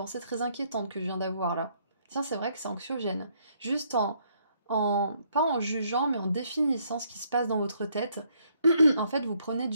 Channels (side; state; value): both; inverted; correlation -0.70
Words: très inquiétante que je viens d'avoir là. Tiens, c'est vrai que c'est anxiogène. Juste pas en jugeant, mais en définissant ce qui se passe dans votre tête, en fait, vous prenez